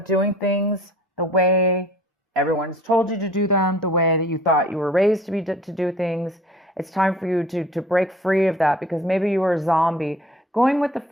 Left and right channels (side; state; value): both; normal; correlation 0.49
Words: doing things the way everyone's told you to do them, the way that you thought you were raised to do things. It's time for you to break free of that, because maybe you were a zombie. Going with the